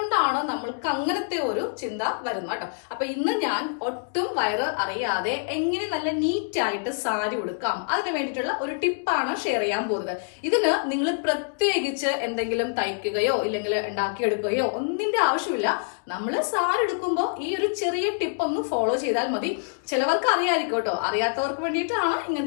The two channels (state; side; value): silent; right; digital silence